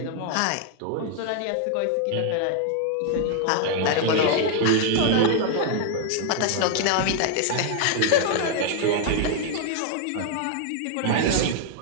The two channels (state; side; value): different; both; correlation 0.00